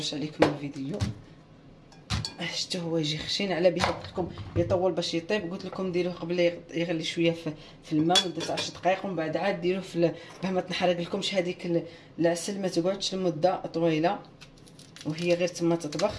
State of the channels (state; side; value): identical; both; correlation 1.00